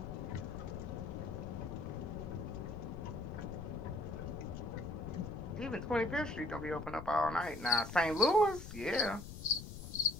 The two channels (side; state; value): left; noise; rumble, 10 dB below the sound